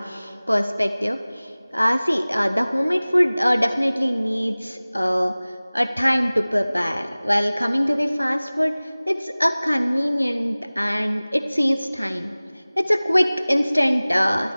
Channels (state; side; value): inverted; both; correlation -0.99